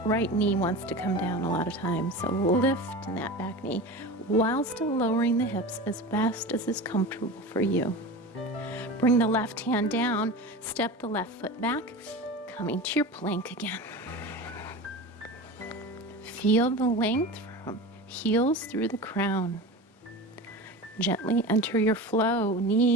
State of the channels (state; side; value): normal; both; correlation 0.30